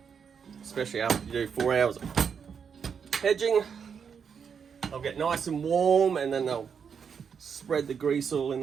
Especially after you do 4 hours of hedging. They'll get nice and warm and then they'll spread the grease all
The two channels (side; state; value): left; quieter; 6.8 dB